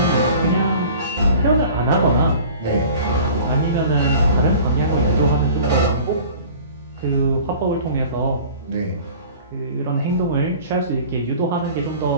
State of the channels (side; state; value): both; inverted; correlation -0.45